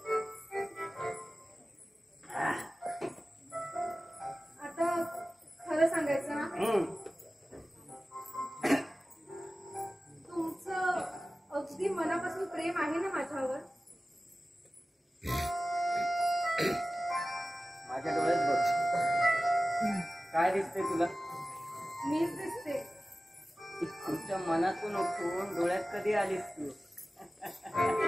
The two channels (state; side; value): normal; both; correlation 0.96